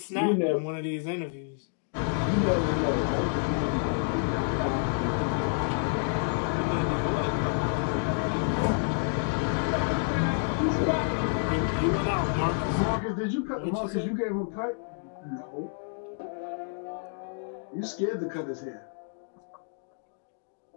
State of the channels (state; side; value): silent; right; digital silence